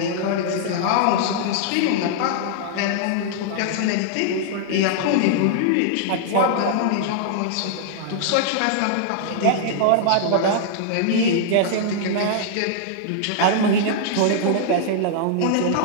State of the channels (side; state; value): both; different; correlation -0.01